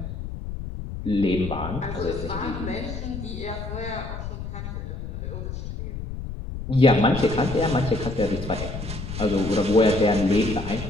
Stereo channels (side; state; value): left; noise; rumble, 7 dB below the sound